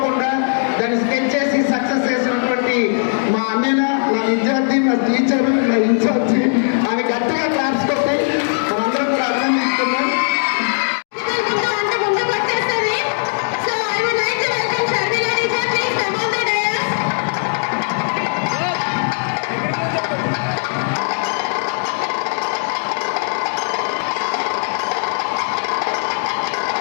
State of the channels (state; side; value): silent; right; digital silence